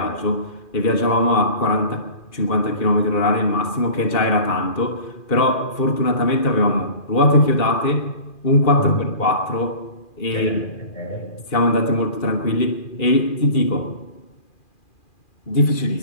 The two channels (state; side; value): late; right; 2.4 ms